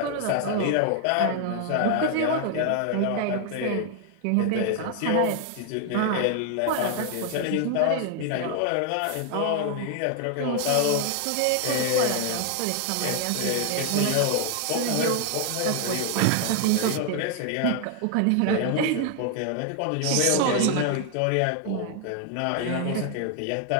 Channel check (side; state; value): both; different; correlation 0.00